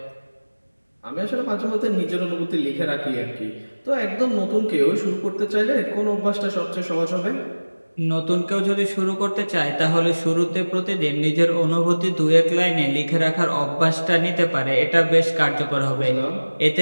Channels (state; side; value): inverted; both; correlation -1.00